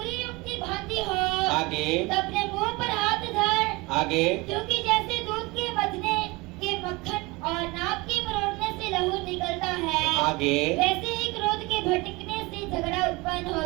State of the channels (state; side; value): quieter; left; 23.7 dB